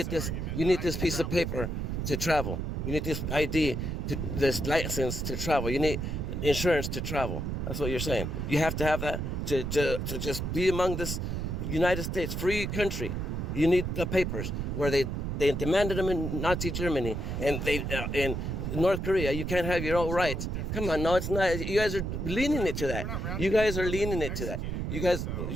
this piece of paper to travel. You need this ID, this license to travel. You need insurance to travel. That's what you're saying. You have to have that to just be among this United States free country. You need the papers where they demanded them in Nazi Germany, and in North Korea you can't have your own rights. Come on, no, it's not. You guys are leaning it to that. You guys are leaning it to that. You guys,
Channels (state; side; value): noise; right; rumble, 2 dB below the sound